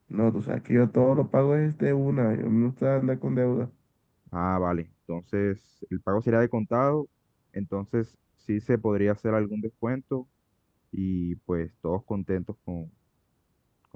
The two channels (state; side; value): identical; both; correlation 1.00